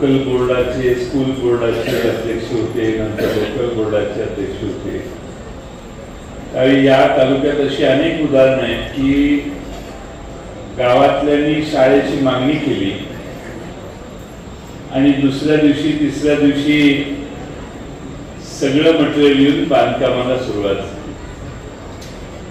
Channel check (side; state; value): both; identical; correlation 1.00